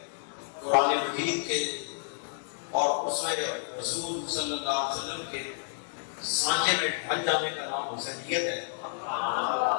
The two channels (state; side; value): silent; right; digital silence